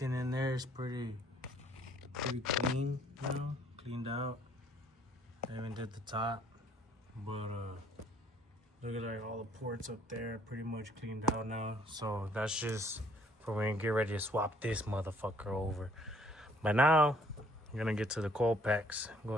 in there is pretty clean, you know, cleaned out. I even did the top, but look at like all the ports up there, pretty much cleaned out now. So that's just for when we get ready to swap this motherfucker over. But now I'm gonna get to the coil packs. Go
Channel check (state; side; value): normal; both; correlation 0.62